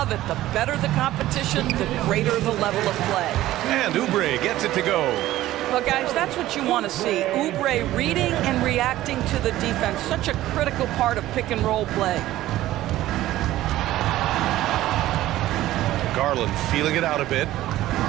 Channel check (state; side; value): quieter; left; 15.0 dB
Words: it. The better the competition, the greater the level of play. And Oubre gets it to go. Well, guys, that's what you want to see. Oubre reading and reacting to the defense. Such a critical part of pick-and-roll play. Garland feeling it out a bit.